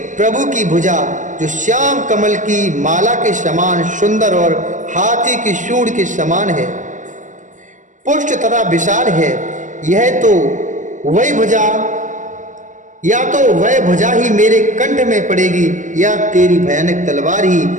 प्रभु की भुजा जो श्याम कमल की माला के समान सुंदर और हाथी की सूंड के समान है, पुष्ट तथा विशाल है, यह तो वही भुजा, या तो वह भुजा ही मेरे कंठ में पड़ेगी, या तेरी भयानक तलवार ही।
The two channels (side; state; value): left; late; 0.37 ms